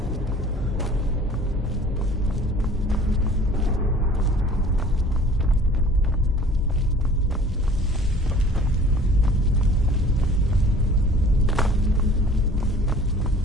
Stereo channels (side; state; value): both; normal; correlation 0.49